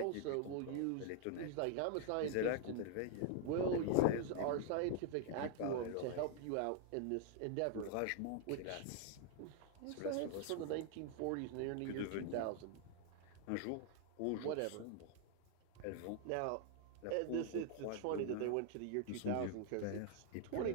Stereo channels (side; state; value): both; different; correlation 0.00